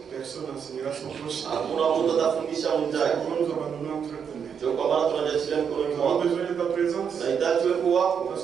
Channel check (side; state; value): left; quieter; 7.2 dB